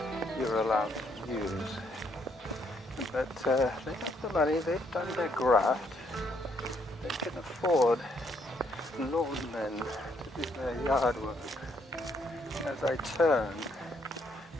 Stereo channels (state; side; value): normal; both; correlation 0.71